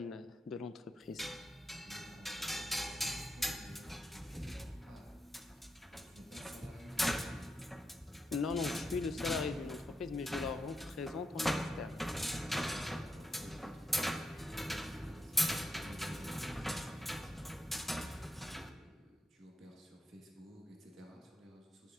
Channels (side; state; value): both; normal; correlation 0.84